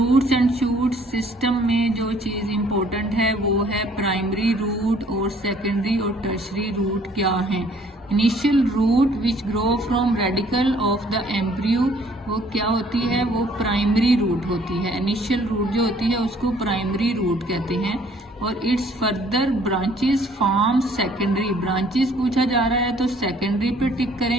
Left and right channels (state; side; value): normal; both; correlation 0.59